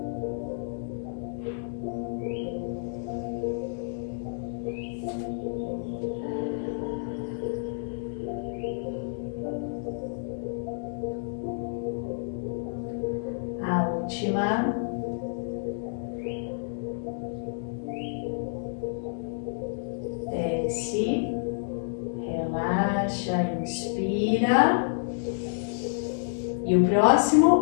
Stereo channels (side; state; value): right; silent; digital silence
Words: A última. Desce, relaxa, inspira. E o